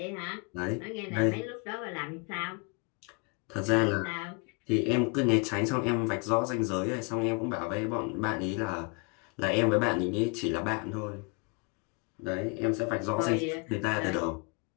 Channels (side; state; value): right; quieter; 32.8 dB